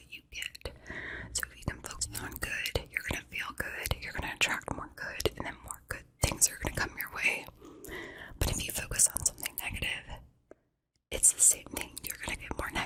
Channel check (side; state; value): both; identical; correlation 1.00